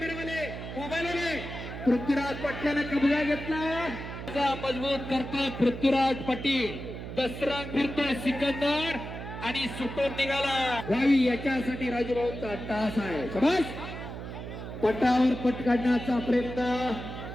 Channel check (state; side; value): noise; right; hum, 9 dB below the sound